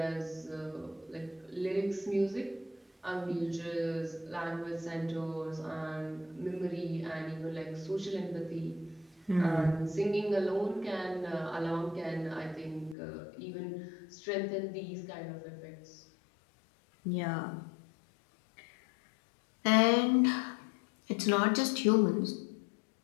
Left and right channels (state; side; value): drops out; right; at 13.0 s